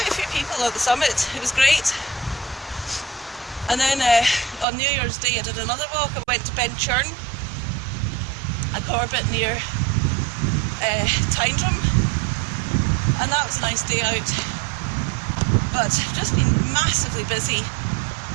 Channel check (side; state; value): left; drops out; at 4.7 s